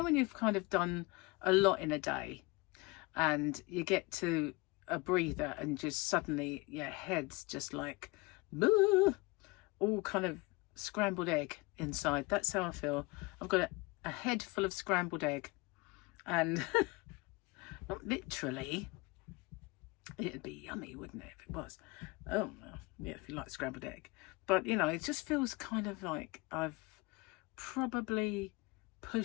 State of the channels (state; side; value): quieter; right; 24.5 dB